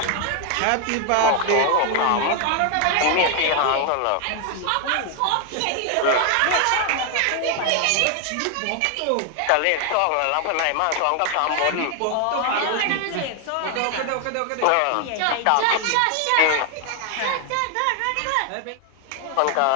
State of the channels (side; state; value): both; different; correlation 0.01